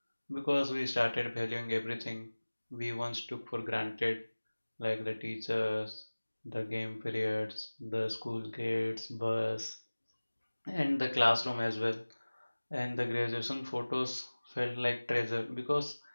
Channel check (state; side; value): inverted; both; correlation -1.00